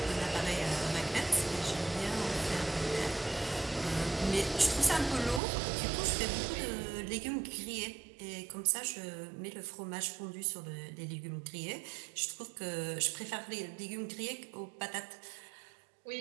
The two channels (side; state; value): left; drops out; at 5.4 s